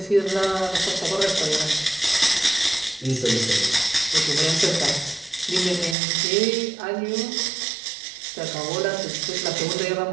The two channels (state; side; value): drops out; left; at 6.0 s